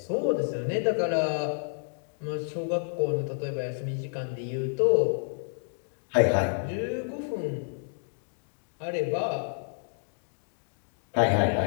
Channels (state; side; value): silent; right; digital silence